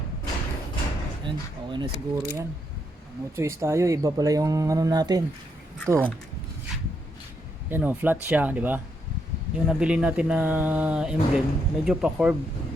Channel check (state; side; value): normal; both; correlation 0.78